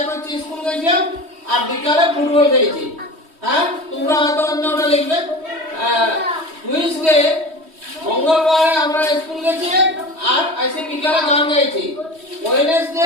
হচ্ছে স্কুল গেছিলাম আর বিকালে ফুটবল খেলেছি। হ্যাঁ তোমরা হয়তো অন্যটা লিখবে। টুইসডে মঙ্গলবারে আমরা স্কুল গেছি আর এসে বিকালে গান গাইছি।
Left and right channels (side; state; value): left; late; 3.1 ms